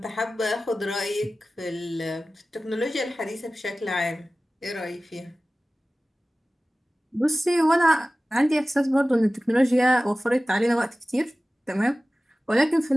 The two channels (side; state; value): both; normal; correlation 0.97